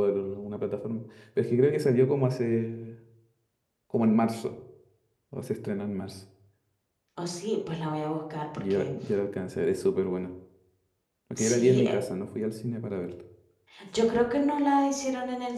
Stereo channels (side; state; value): both; identical; correlation 1.00